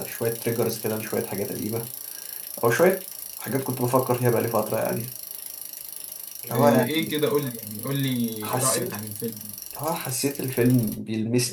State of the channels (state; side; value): identical; both; correlation 1.00